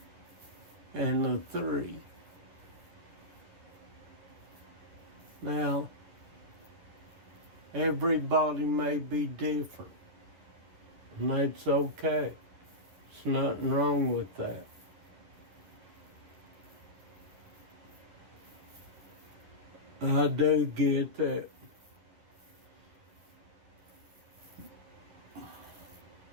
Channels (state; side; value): late; left; 10 ms